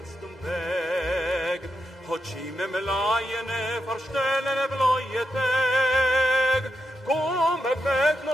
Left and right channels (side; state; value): both; normal; correlation 0.85